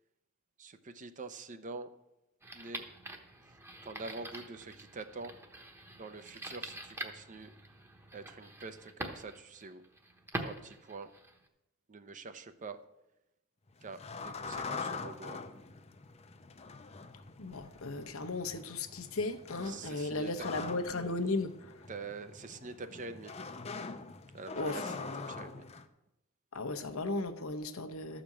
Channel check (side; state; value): both; normal; correlation 0.04